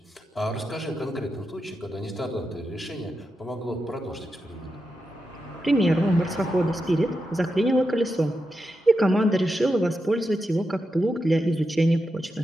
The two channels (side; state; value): both; normal; correlation 0.87